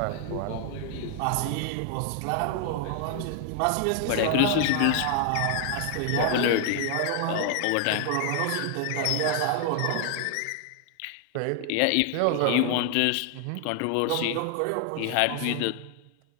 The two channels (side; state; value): both; different; correlation 0.00